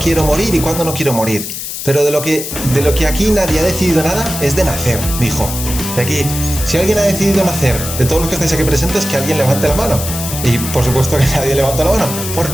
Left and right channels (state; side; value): noise; left; hiss, 7 dB below the sound